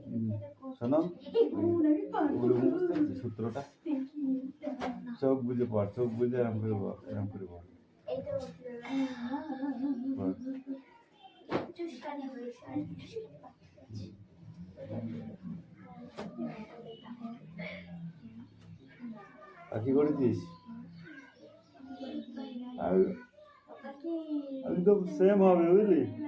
শোনো, সূত্রটা চোখ বুঝে পড়, চোখ বুঝে এরম করে বল, এরম করে বল। আর কি করেছিস? আমি তো সেম হবে বুঝলি,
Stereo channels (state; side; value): identical; both; correlation 1.00